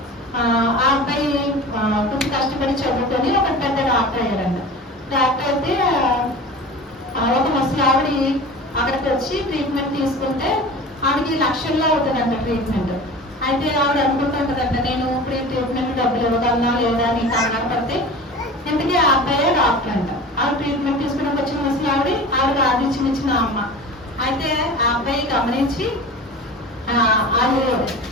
ఆ అబ్బాయి కొంచెం కష్టపడి చదువుకొని ఒక పెద్ద డాక్టర్ అయ్యాడంట. డాక్టర్ అయితే ఒక ముసలి ఆవిడ అక్కడికి వచ్చి ట్రీట్మెంట్ తీసుకుంటే ఆవిడకి లక్షల్లో అవుతుందంట ట్రీట్మెంట్. అయితే ఆవిడ అనుకుంటుంటదంట నేను ఇప్పుడు ట్రీట్మెంట్ డబ్బులు ఇవ్వగలనా లేదా అని కంగారు పడితే ఇంతకీ ఆ అబ్బాయే డాక్టర్ అంట. ఆవిడ ట్రీట్మెంట్ తీసుకున్నాక వచ్చిన ముసలి ఆవిడ ఆదిత్యం ఇచ్చిన అమ్మ. అయితే ఆ అబ్బాయి గమనించి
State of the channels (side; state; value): both; normal; correlation 0.36